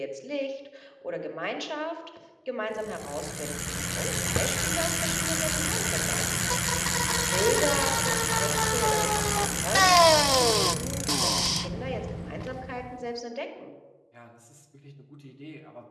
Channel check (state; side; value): identical; both; correlation 1.00